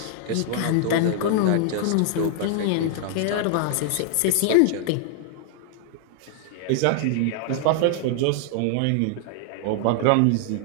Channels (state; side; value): different; both; correlation 0.00